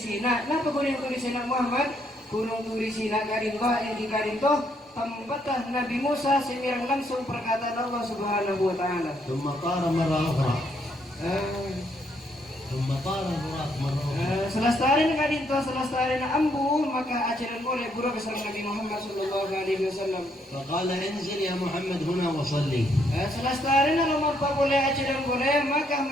Sina. Napa gunung Turi Sina Muhammad? Gunung Turi Sina karito yang di karito tempat Nabi Musa semirang langsung perkataan Allah Subhanahu wa taala. ثم طار مرة أخرى. ثم طار البراق مرة أخرى. Selesai kadinto selesai ambu maka ajaran boleh buruk kesan Nabi Muhammad sallallahu alaihi wasallam. فقال انزل يا محمد هنا وصلي. Selesai nomor apa boleh ajaran boleh maka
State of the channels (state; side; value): normal; both; correlation 0.72